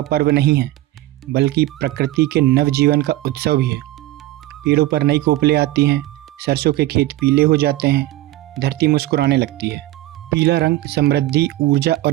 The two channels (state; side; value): quieter; left; 16.2 dB